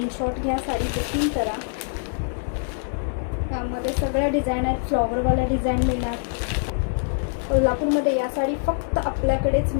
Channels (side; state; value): right; silent; digital silence